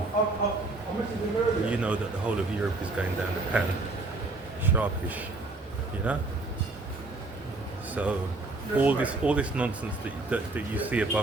you know that the whole of Europe is going down the pan, sharpish, you know? So all this nonsense that you see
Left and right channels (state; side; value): quieter; left; 3.2 dB